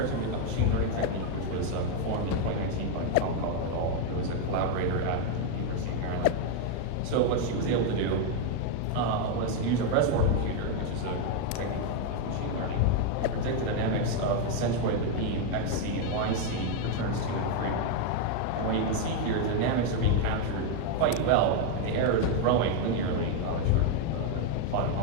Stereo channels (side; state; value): both; different; correlation 0.01